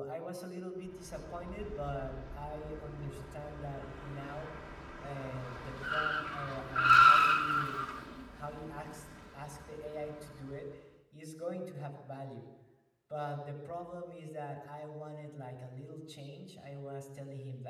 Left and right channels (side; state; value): both; identical; correlation 1.00